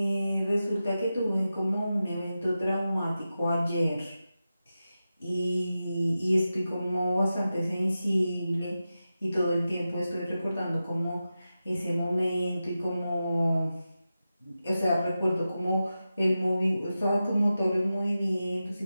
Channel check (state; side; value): inverted; both; correlation -0.92